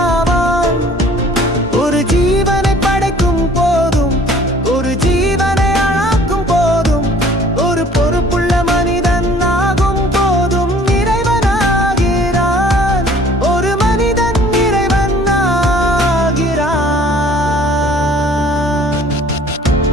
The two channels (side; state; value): both; normal; correlation 0.53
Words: ஆவான். ஒரு ஜீவனை படைக்கும் போதும், ஒரு ஜீவனை அழாக்கும் போதும், ஒரு பொறுப்புள்ள மனிதன் ஆகும் போதும் இறைவனாகிறான். ஒரு மனிதன் இறைவன் ஆகிறான்.